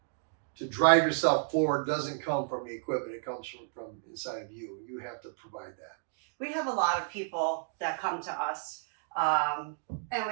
to drive yourself forward doesn't come from the equipment. It comes from inside of you. You have to provide that. We have a lot of people that come to us, and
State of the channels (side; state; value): left; silent; digital silence